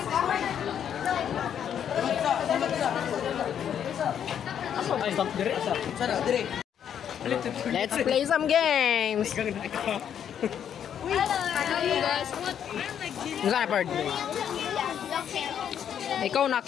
Let's play some games. Hello guys, what? Saan na, Perd? Ikaw na,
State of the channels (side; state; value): right; quieter; 9.0 dB